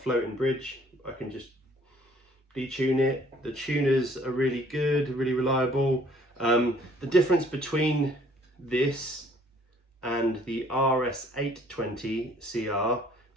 bridge, I can just detune it. The tuners are really good, really reliable. The difference between this and the RS20CR,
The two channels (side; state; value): both; normal; correlation 0.59